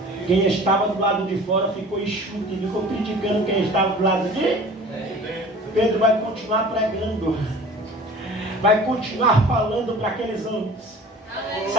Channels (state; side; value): normal; both; correlation 0.44